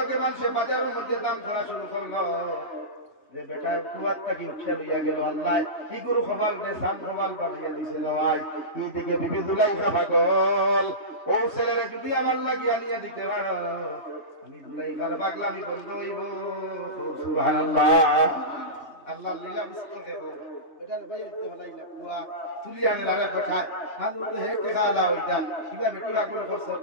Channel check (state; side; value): late; right; 2.8 ms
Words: মানুষে বাজারের মধ্যে দাম ধরা শুরু করলো যে বেটা কুয়ারটা কি উঠে লইয়া গেল, আল্লাহ কি গুরু খবর যে সাম খবর বানিয়ে দিছে নয়। এই দিকে বিবি দুলাইখা পাগল, ও ছেলেরে যদি আমার লাগিয়ে আনিয়া দিতে পারো আমি দুলাইখার পাগলামি বন্ধ হইব। সুবহানাল্লাহ। আল্লাহ লীলা বুঝতে দেব বেটার ভাই তো হলাইলা কুয়া তুলি আনে লারে পাঠায় মাঝে তো হে টেকা আলা হইতা কিবা বেটি আগুন করছে।